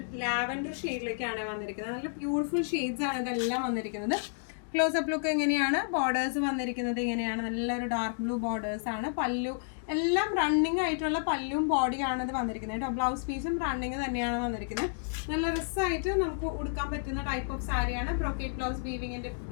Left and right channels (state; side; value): silent; right; digital silence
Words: ലാവൻഡർ ഷെയ്ഡിലേക്കാണ് വന്നിരിക്കുന്നത്. നല്ല ബ്യൂട്ടിഫുൾ ഷെയ്ഡ്സ് ആണ് ഇതെല്ലാം വന്നിരിക്കുന്നത്. ക്ലോസപ്പ് ലുക്ക് എങ്ങനെയാണ്? ബോർഡേഴ്സ് വന്നിരിക്കുന്നത് ഇങ്ങനെയാണ്. നല്ലൊരു ഡാർക്ക് ബ്ലൂ ബോർഡേഴ്സ് ആണ്. പല്ലു എല്ലാം റണ്ണിങ് ആയിട്ടുള്ള പല്ലും ബോഡിയാണ് ഇത് വന്നിരിക്കുന്നത് കേട്ടോ. ബ്ലൗസ് പീസും റണ്ണിങ് തന്നെയാണ് വന്നിരിക്കുന്നത്. നല്ല രസമായിട്ട് നമുക്ക് ഉടുക്കാൻ പറ്റുന്ന ടൈപ്പ് ഓഫ് സാരിയാണ്. ബ്രൊക്കേഡ് ബ്ലൗസ് വീവിങ്ങിന്റെ